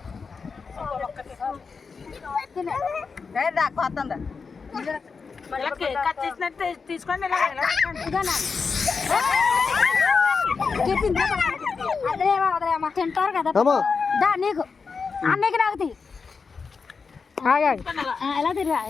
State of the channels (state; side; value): quieter; right; 5.1 dB